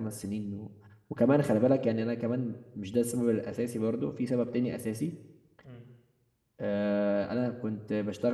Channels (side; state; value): both; identical; correlation 1.00